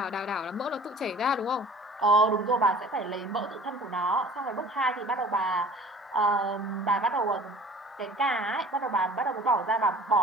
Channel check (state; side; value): normal; both; correlation 0.46